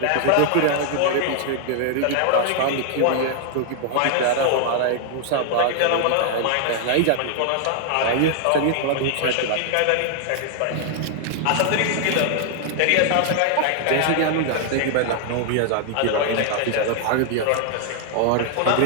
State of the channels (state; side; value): different; both; correlation 0.00